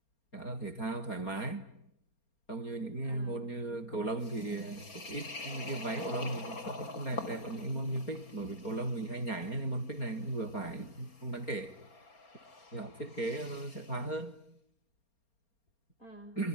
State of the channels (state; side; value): late; right; 4.3 ms